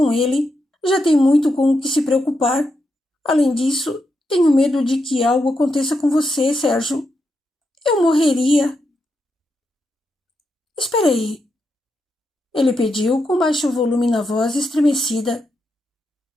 ele. Já tem muito com o que se preocupar. Além disso, tenho medo de que algo aconteça com você, Sérgio. Eu morreria. Espera aí. Ele pediu com baixo volume na voz estremecida.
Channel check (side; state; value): both; normal; correlation 0.84